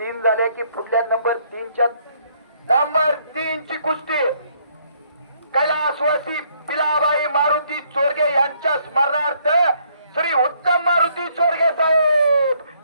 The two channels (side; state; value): both; inverted; correlation -0.68